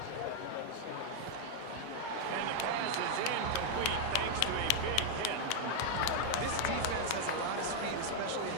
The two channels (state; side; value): different; both; correlation 0.00